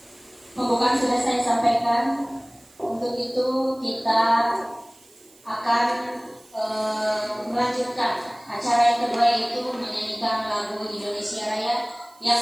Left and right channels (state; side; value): noise; right; hiss, 28 dB below the sound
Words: Pembukaan sudah saya sampaikan. Untuk itu kita akan melanjutkan acara yang kedua, yaitu menyanyikan lagu Indonesia Raya yang